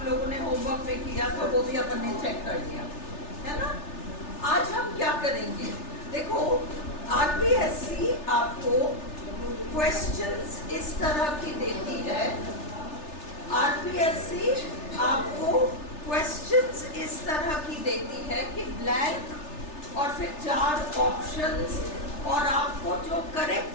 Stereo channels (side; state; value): right; late; 3.3 ms